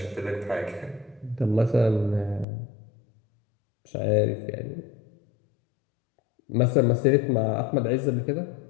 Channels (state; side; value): drops out; right; at 2.5 s